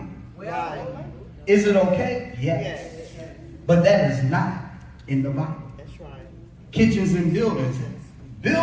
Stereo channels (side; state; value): both; identical; correlation 1.00